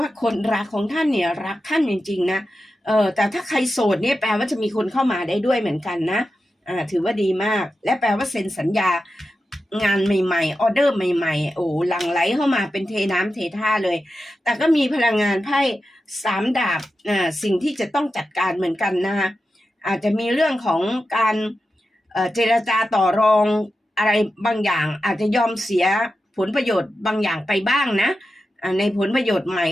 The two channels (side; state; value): both; normal; correlation 0.91